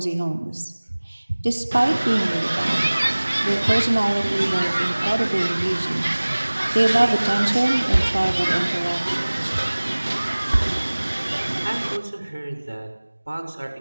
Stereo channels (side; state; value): both; inverted; correlation -1.00